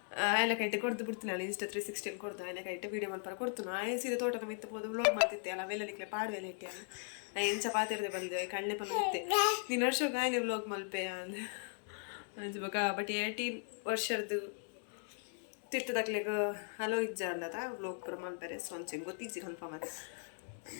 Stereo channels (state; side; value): silent; right; 52 dB below the other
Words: ಆಯ್ಲ ಕೈಟೆ ಕೊಡ್ದು ಬಿಡ್ತೀನಿ ಅಲ್ಲ ಇನ್ಸ್ಟಾ 360 ಕೊಡ್ದು ಆಯ್ಲ ಕೈಟೆ ವೀಡಿಯೋ ಮಲ್ಪರ ಕೊಡ್ತು ಸೀದಾ ತೋಟದ ಮಿತ್ತು ಹೋದು ಬ್ಲಾಗ್ ಮಾಡ್ತಿದ್ದೆ ಅಲ್ಲ ಅವೆಲ್ಲಲಿಕ್ಕೆ ಪಾಡುವೆಲ್ಲ ಇಟ್ಟೆ ಅಲ್ಲ ಎಂಚ ಪಾತಿರದೆ ಬಂದೆ ಕಣ್ಣೆ ಪಲ್ಲ ಇತ್ತೆ ನೀನು ವರ್ಷಕ್ಕೆ ಆಯ್ಲೆ ಬ್ಲಾಗ್ ಮಲ್ಪೆ ಅಂದ ಅಂಚ ಬೊಕ್ಕ ಬಟ್ 18 ವರ್ಷದ್ದು ತಿರ್ತದಾಗ್ಲಿಗೆ ಹಲೋ ಇಜ್ಜ ಅಲ್ಲದ ಬ್ಲಾಗ್ ಪುರ ಮಲ್ಪರೆ ಸೊ ಅಂಚೆ ಗೊತ್ತಿಜ್ಜಿ ಕನ್ಫರ್ಮ್ ಅದ